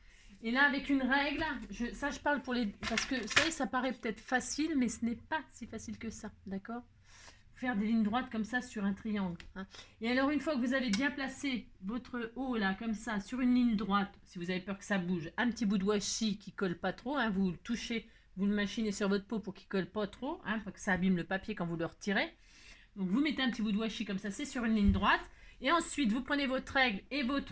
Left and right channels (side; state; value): both; identical; correlation 1.00